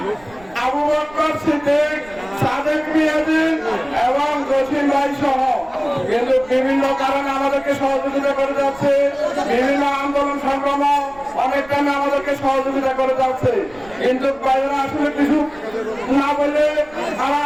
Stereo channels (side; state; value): right; noise; rumble, 23 dB below the sound